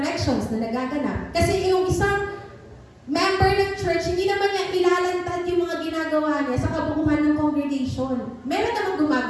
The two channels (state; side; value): identical; both; correlation 1.00